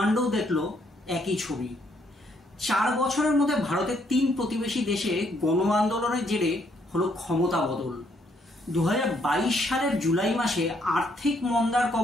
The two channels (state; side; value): normal; both; correlation 0.71